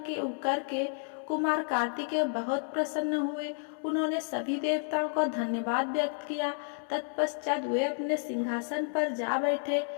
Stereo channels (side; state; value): right; silent; digital silence